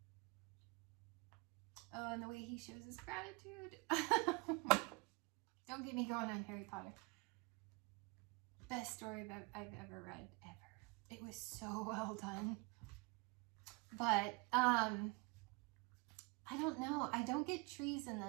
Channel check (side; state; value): left; quieter; 27.6 dB